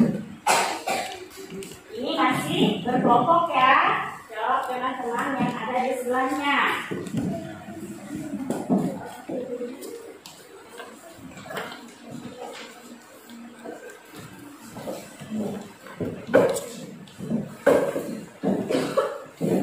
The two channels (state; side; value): identical; both; correlation 1.00